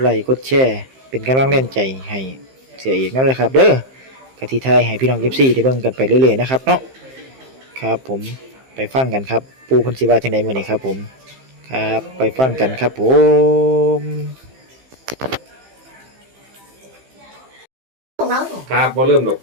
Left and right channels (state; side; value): late; left; 15 ms